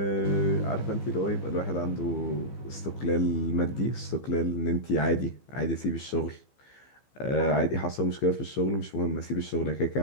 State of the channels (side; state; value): right; late; 15 ms